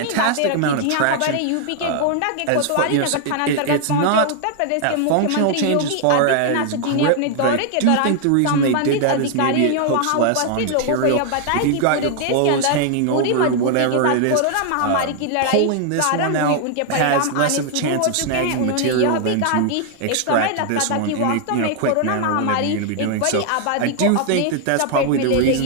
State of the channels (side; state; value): both; different; correlation 0.00